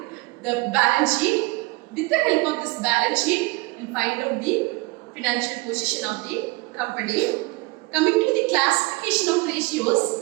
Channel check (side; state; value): left; quieter; 24.5 dB